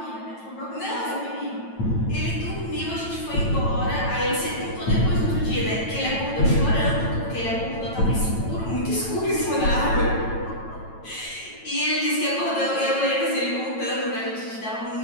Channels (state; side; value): late; right; 9.0 ms